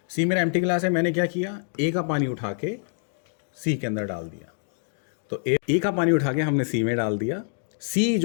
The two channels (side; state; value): right; silent; digital silence